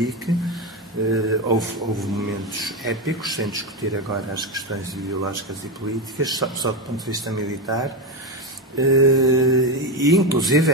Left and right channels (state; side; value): normal; both; correlation 0.13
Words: Houve momentos épicos, sem discutir agora as questões ideológicas e políticas, só do ponto de vista militar. E inclusive